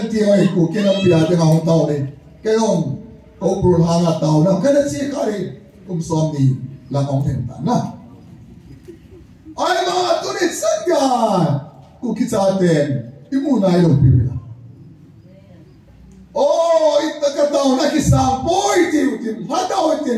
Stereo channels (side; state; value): both; identical; correlation 1.00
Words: tiếng ấy của cái năm bia đi nga hong tàu này cái ông câu bùn hàng là tàu nào cái đó chỉ cái này cũng xóm đi là ông thành ta na ai mà tu này sẵn cả của cái cha tiền imu này đâu bị oh ita ka tao na kisang boy tin hataw